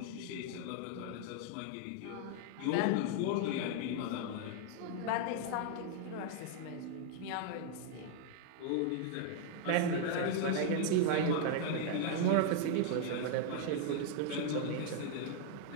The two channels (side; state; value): both; different; correlation 0.00